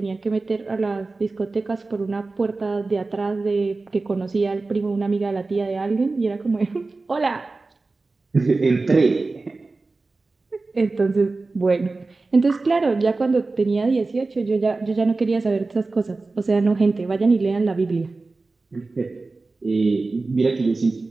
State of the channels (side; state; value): left; quieter; 3.6 dB